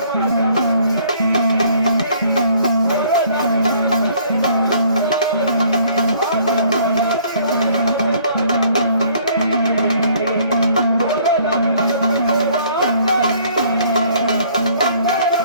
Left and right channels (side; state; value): both; inverted; correlation -0.60